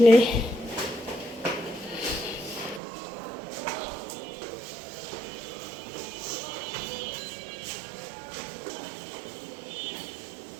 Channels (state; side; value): drops out; left; at 2.8 s